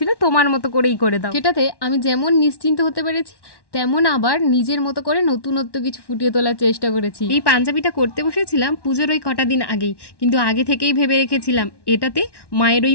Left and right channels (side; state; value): right; late; 1.1 ms